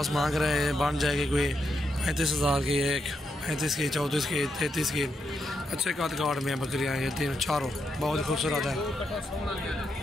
मांग रहे हैं। बन जाएगी कोई 35,000 की एक, 35 की, 34 की, 33 की। अच्छे कार्ड में बकरियां ये तीनों चारों बहुत खूबसूरत है।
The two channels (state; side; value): normal; both; correlation 0.82